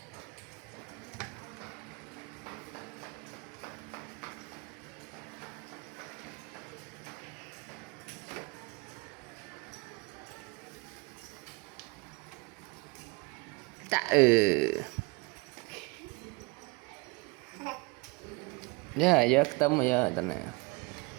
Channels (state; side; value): quieter; left; 27.9 dB